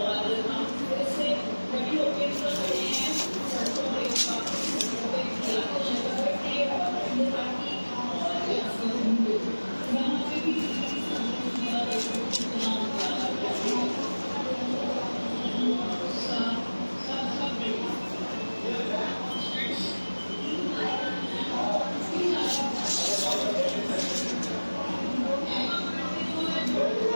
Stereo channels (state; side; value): inverted; both; correlation -1.00